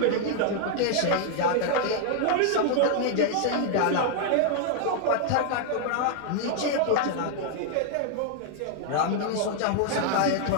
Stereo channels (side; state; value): both; different; correlation 0.00